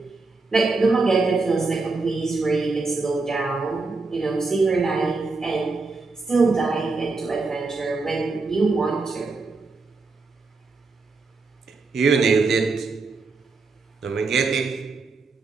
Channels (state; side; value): quieter; left; 3.9 dB